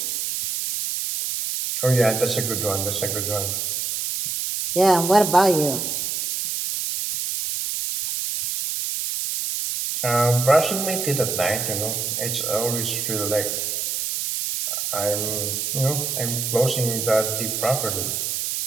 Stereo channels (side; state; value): right; noise; hiss, 2 dB below the sound